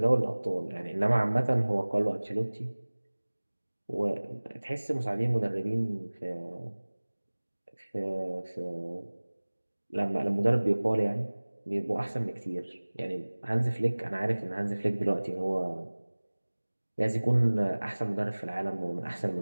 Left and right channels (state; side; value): inverted; both; correlation -1.00